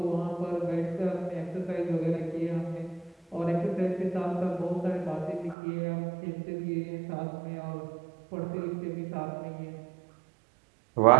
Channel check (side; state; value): left; drops out; at 5.6 s